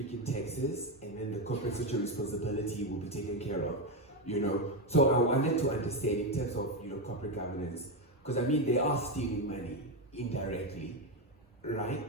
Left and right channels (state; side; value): normal; both; correlation 0.10